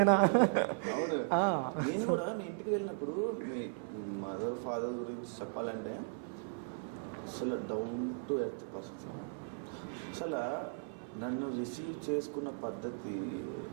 అవును, నేను కూడా మీ ఇంటికి వెళ్ళినప్పుడు మీ మదర్ ఫాదర్ గురించి చెప్పాలంటే అసలు డౌన్ టు ఎర్త్ పర్సన్స్ అన్నమాట. అసలు నన్ను రిసీవ్ చేసుకున్న పద్ధతి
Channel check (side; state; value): left; silent; 53 dB below the other